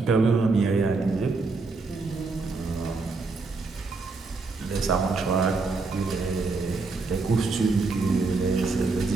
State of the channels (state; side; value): quieter; left; 3.9 dB